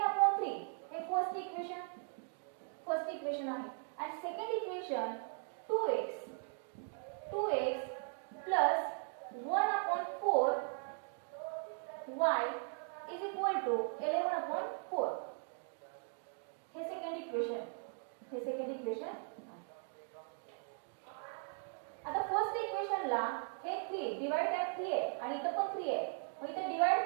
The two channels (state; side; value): silent; left; 52 dB below the other